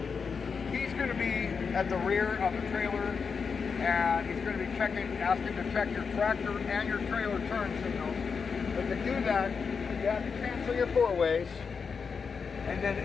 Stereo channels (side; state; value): right; quieter; 5.6 dB